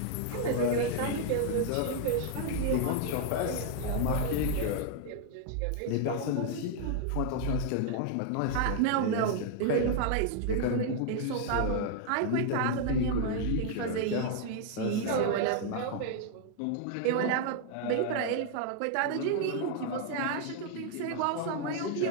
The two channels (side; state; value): both; different; correlation 0.00